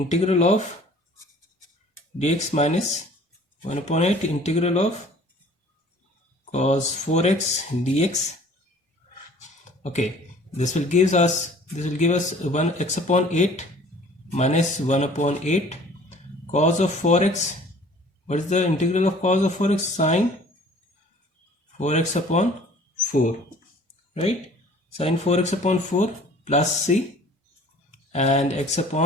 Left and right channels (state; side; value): normal; both; correlation 0.50